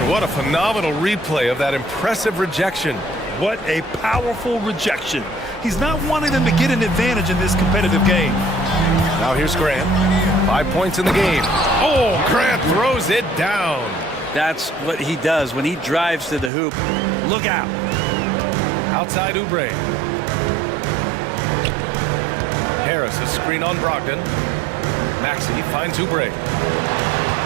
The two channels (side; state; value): left; drops out; at 16.5 s